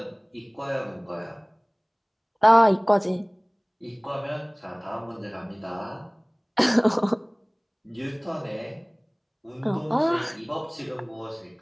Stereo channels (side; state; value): both; identical; correlation 1.00